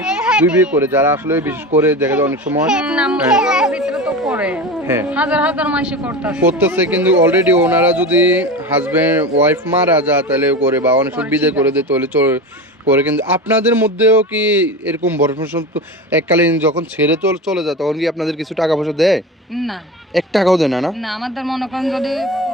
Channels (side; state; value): both; normal; correlation 0.27